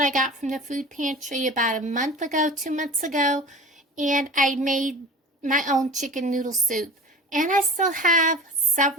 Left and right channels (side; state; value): both; normal; correlation 0.38